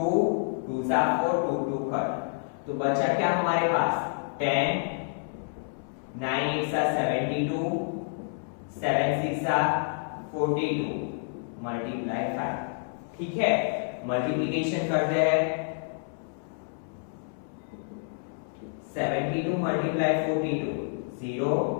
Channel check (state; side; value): silent; right; 59 dB below the other